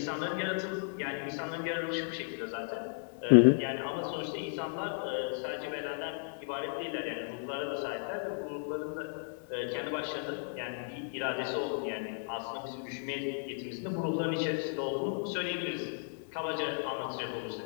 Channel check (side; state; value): right; silent; digital silence